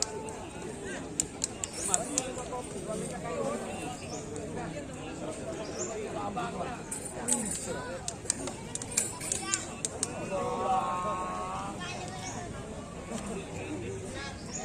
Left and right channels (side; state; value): both; identical; correlation 1.00